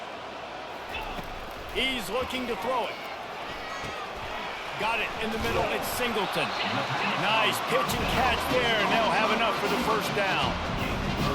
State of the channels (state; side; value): identical; both; correlation 1.00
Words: He's looking to throw it. Got it in the middle. It's Singleton. Nice pitch and catch there, and they'll have enough for the 1st down.